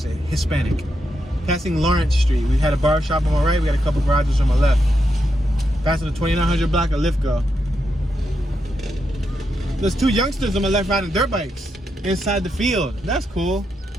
Hispanic. Passing Lawrence Street, we had a bar shop on my right, we got a couple garages on my left. Passing the 2900 block of Lithgow. There's 2 youngsters on my left riding dirt bikes inside the field. That's cool.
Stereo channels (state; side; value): normal; both; correlation 0.83